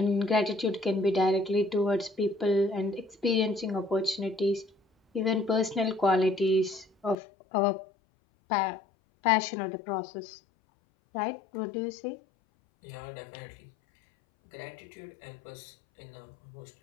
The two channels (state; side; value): drops out; right; at 7.2 s